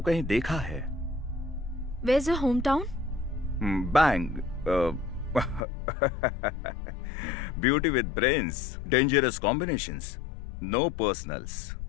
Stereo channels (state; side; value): drops out; right; at 5.6 s